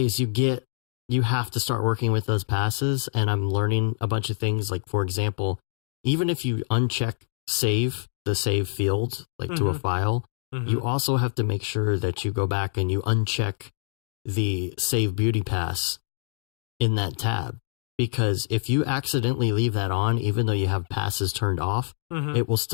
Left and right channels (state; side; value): quieter; right; 30.9 dB